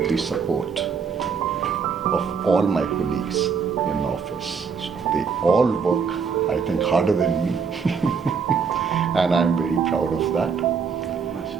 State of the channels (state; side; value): quieter; left; 6.0 dB